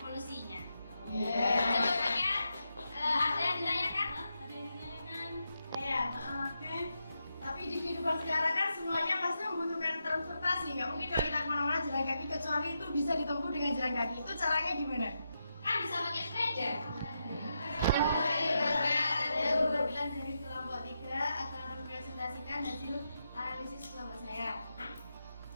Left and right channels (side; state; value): both; inverted; correlation -0.85